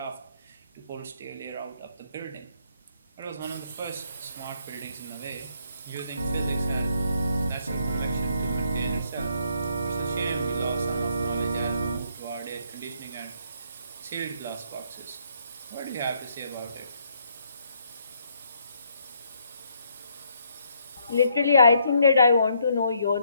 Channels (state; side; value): inverted; both; correlation -0.71